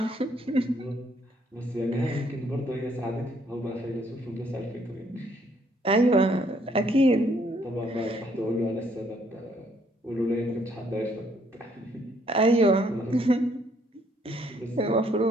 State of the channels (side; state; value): both; normal; correlation 0.67